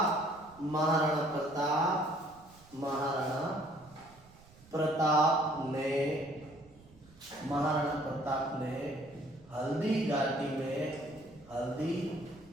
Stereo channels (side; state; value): right; noise; rumble, 24 dB below the sound